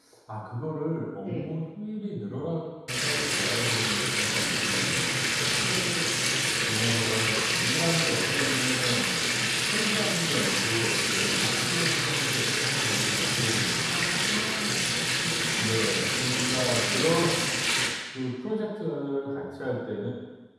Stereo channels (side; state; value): both; identical; correlation 1.00